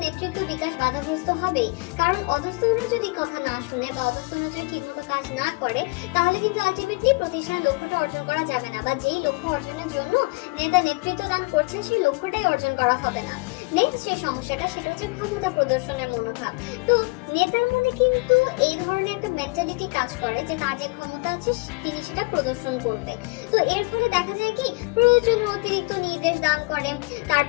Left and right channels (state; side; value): quieter; right; 28.6 dB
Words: নেতৃত্ব বিকাশ বাধাগ্রস্ত হবেই। কারণ অধস্তনরা যদি কথা না শুনে বা অধস্তনরা যদি ঠিকমতো কাজ না করে তাহলে কিন্তু আলটিমেটলি প্রতিষ্ঠানের লক্ষ্যটা অর্জন করা যাবে না, বা যেই লক্ষ্য অর্জনের জন্য নেতা নেতৃত্ব দান করছে সেই লক্ষ্যটাই অর্জন করা হবে না। নেক্সট যে সমস্যাটা সেটা হচ্ছে ক্ষমতা প্রদর্শনের মনোভাব। তো নেতার মনে কিন্তু এই ধরনের একটা মেন্টালিটি কাজ করে যে তার যে ক্ষমতা আছে তিনি সেটা প্রদর্শন করবে। তো এর ফলে দেখা যায় কি প্রয়োজনীয় অতিরিক্ত নির্দেশ দান করেন,